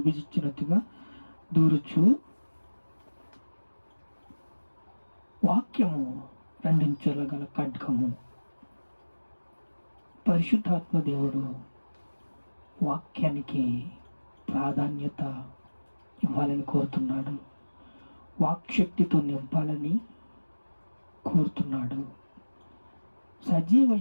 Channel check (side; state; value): both; inverted; correlation -1.00